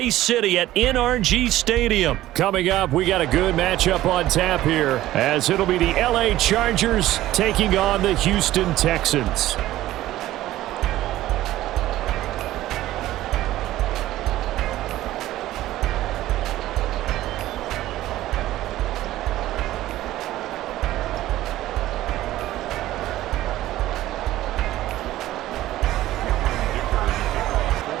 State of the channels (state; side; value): quieter; left; 15.0 dB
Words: City at NRG Stadium. Coming up, we got a good matchup on tap here as it'll be the LA Chargers taking on the Houston Texans.